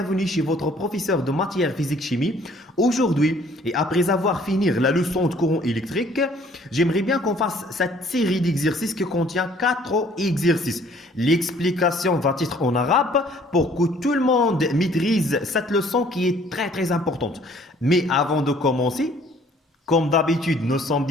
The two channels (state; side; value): normal; both; correlation 0.58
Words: chez votre professeur de matière physique-chimie. Aujourd'hui, et après avoir fini la leçon de courant électrique, j'aimerais bien qu'on fasse cette série d'exercices qui contient 4 exercices. L'explication va être en arabe pour que tout le monde maîtrise cette leçon qui est très importante. Mais avant de commencer, comme d'habitude, nous sommes